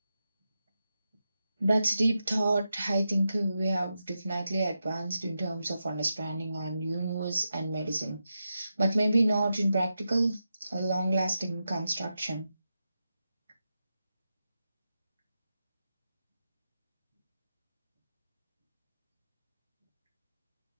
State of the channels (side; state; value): both; inverted; correlation -0.89